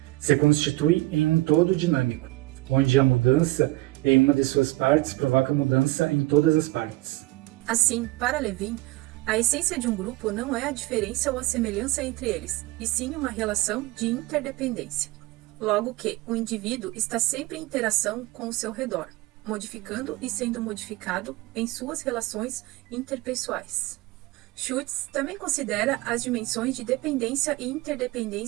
Se constitui em um todo dinâmico, onde a mudança em uma de suas partes provoca mudança em todas as partes. Assim, para Levin, a essência de um grupo não é a diferença ou a semelhança entre eles, e sim uma relação de interdependência. Logo que o indivíduo está sempre em interação com o seu redor, modificando e sendo modificado em suas relações interpessoais. Schutz também considera as dimensões de dependência e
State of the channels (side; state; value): left; quieter; 20.0 dB